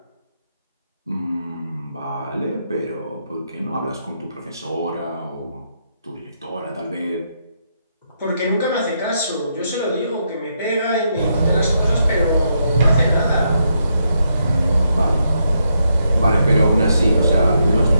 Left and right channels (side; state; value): both; inverted; correlation -0.79